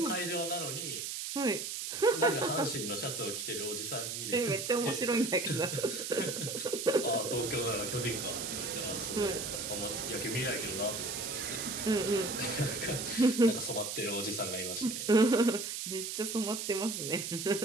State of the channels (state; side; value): noise; right; hiss, 4 dB below the sound